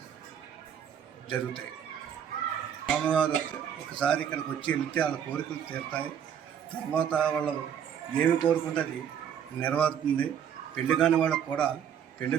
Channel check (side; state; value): left; quieter; 8.7 dB